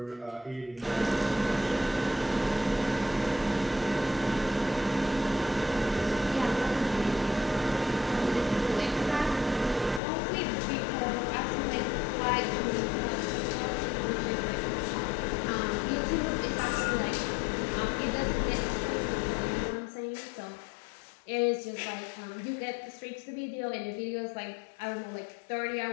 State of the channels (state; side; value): drops out; right; at 10.0 s